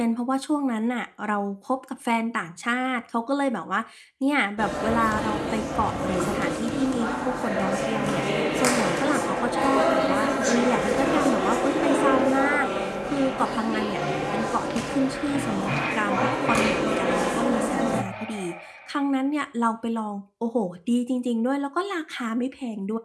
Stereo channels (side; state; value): both; identical; correlation 1.00